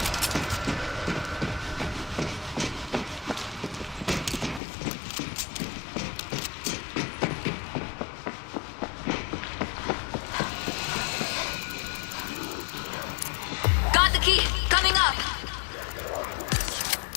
Got the key. Coming up.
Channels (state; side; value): drops out; right; at 4.6 s